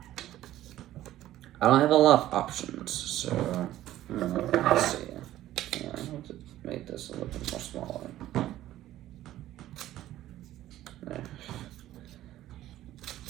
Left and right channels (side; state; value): left; quieter; 13.9 dB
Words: I don't have a lot of options, so let's see. Yeah, I'll just make this a little bit more smaller. There.